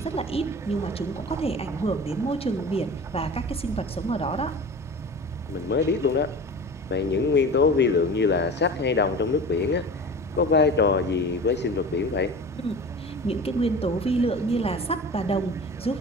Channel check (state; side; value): normal; both; correlation 0.36